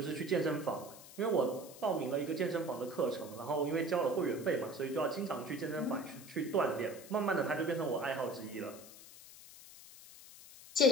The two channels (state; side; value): noise; left; hiss, 17 dB below the sound